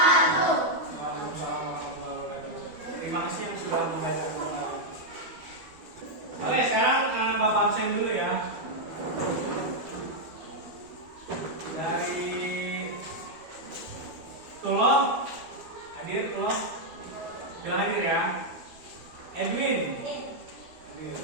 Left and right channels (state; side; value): late; left; 12 ms